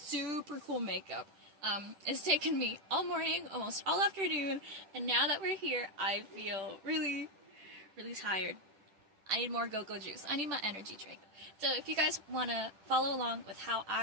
cool makeup. It's taken me all morning, almost all afternoon, and now that we're here, I feel really, really tired. I need more go-go juice. I need my energy drink. So if you guys want to follow along with how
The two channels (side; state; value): left; late; 10 ms